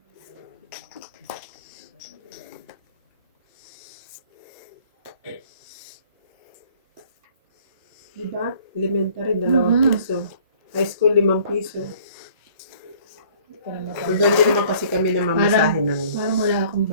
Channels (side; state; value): both; inverted; correlation -0.55